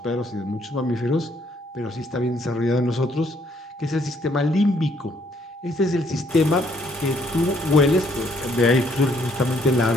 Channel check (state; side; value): normal; both; correlation 0.68